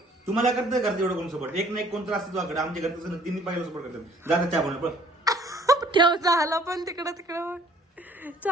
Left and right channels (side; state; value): both; normal; correlation 0.57